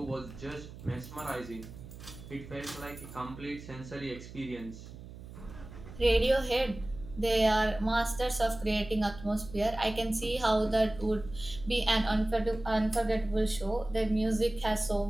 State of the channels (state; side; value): noise; right; hum, 15 dB below the sound